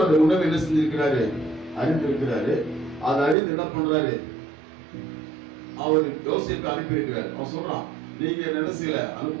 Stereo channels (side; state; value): left; drops out; at 3.4 s